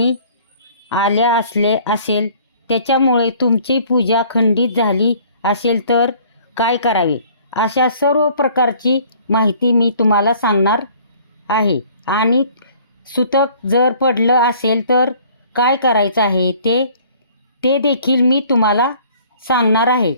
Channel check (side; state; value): both; inverted; correlation -0.55